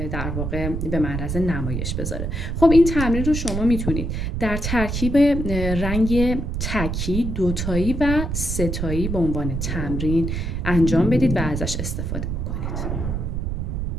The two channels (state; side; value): noise; right; rumble, 2 dB below the sound